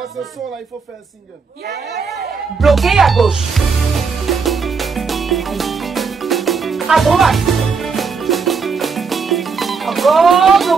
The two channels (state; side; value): quieter; left; 5.2 dB